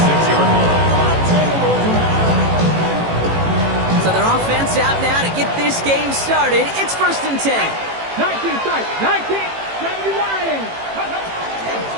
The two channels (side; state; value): left; late; 18 ms